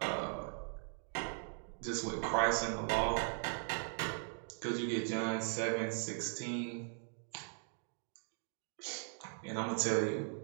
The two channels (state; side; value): silent; left; 52 dB below the other